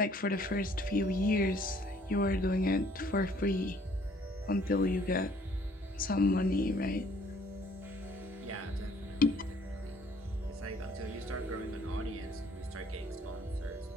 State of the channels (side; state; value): both; normal; correlation 0.60